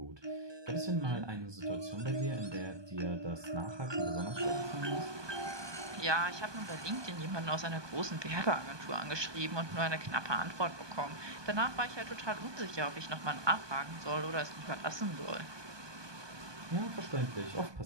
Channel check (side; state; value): left; late; 1.2 ms